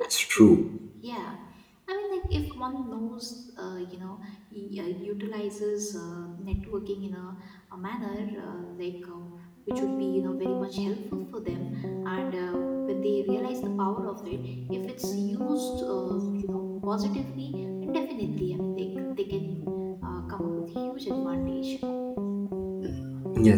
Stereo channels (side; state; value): both; identical; correlation 1.00